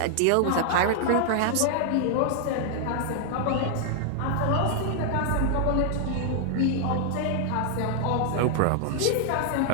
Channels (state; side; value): different; both; correlation 0.00